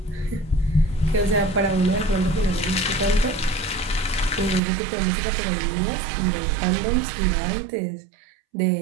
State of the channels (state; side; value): drops out; left; at 4.6 s